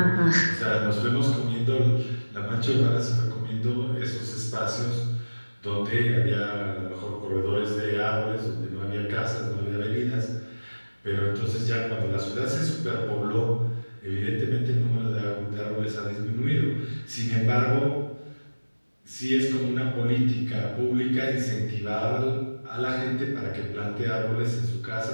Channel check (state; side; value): inverted; both; correlation -1.00